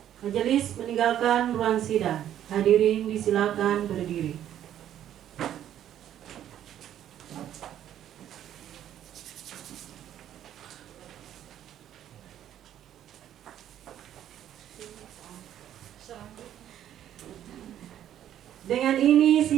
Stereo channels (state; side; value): quieter; left; 11.0 dB